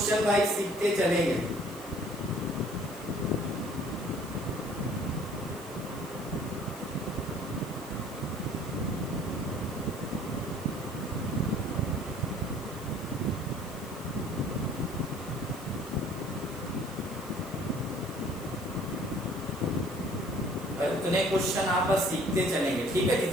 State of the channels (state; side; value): noise; left; hiss, 17 dB below the sound